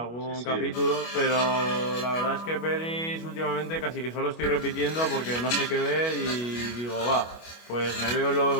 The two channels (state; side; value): late; right; 25 ms